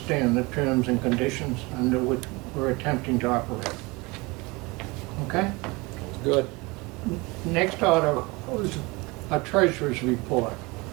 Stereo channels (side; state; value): left; quieter; 25.0 dB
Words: the terms and conditions under which we're attempting to operate. Okay? Good. Next order was a treasurer's report.